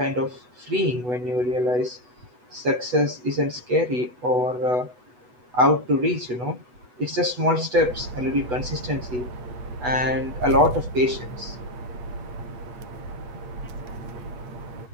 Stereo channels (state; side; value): late; left; 8.1 ms